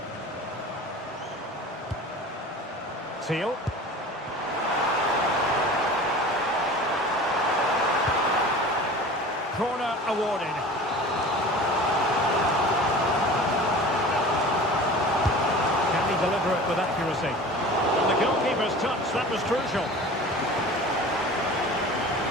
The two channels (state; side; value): normal; both; correlation 0.39